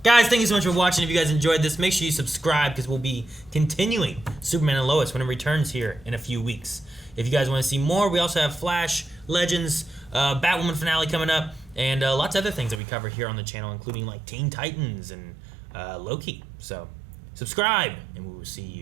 Guys, thank you so much for watching. If you guys enjoyed this, make sure you subscribe because we'll be continuing Superman and Lois when it returns here in a few weeks. If you guys want to see more, we also have Flash, Legends, Batwoman finale coming up, and lots of other things that we cover here on the channel, including like Teen Titans and Loki. So subscribe, and we will see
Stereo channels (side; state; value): left; drops out; at 12.8 s